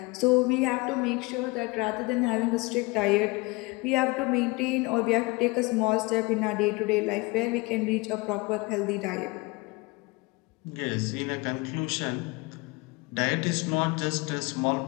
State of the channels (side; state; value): right; quieter; 24.7 dB